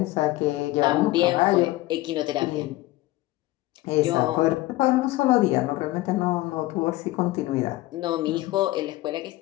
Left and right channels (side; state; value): right; quieter; 18.0 dB